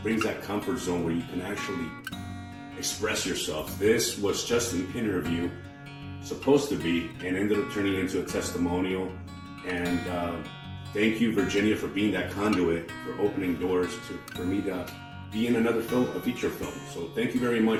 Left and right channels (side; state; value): both; identical; correlation 1.00